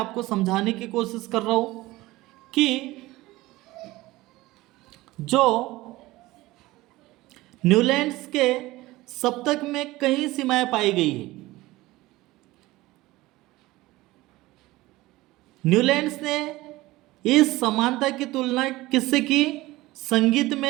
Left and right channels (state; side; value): quieter; left; 18.8 dB